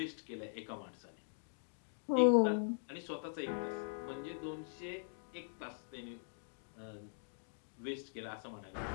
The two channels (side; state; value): right; silent; digital silence